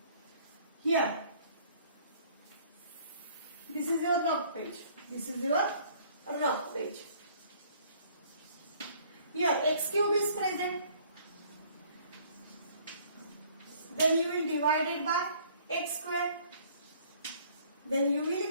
here, this is your rough page. This is your rough page. here x cube is present. Then you will divide it by x square. Then you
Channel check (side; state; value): both; inverted; correlation -0.58